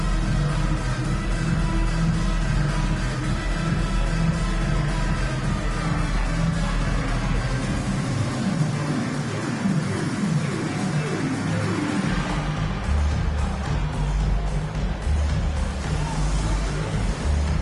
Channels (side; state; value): both; identical; correlation 1.00